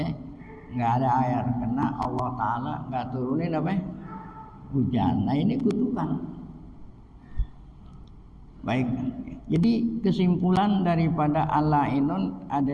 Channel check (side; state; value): both; identical; correlation 1.00